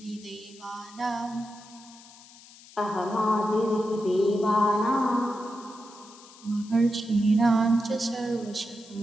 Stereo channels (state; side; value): noise; left; hiss, 21 dB below the sound